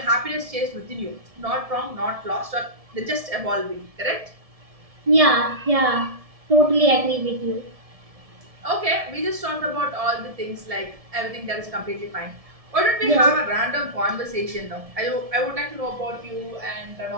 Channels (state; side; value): late; left; 1.7 ms